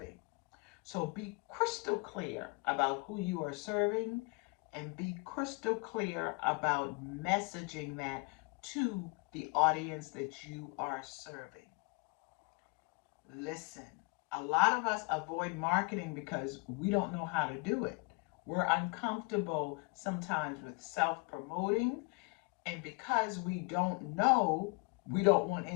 So be crystal clear about who you are serving and be crystal clear about messaging that to the audience that you are serving. Listen, a lot of us avoid marketing because we don't know how to do it. We're uncomfortable sometimes with self promoting, and because we don't know, we don't want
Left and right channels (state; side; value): quieter; right; 30.5 dB